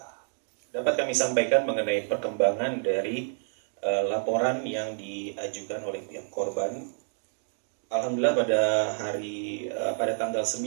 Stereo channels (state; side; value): silent; left; digital silence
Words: dapat kami sampaikan mengenai perkembangan dari laporan yang diajukan oleh pihak korban. Alhamdulillah pada tanggal 9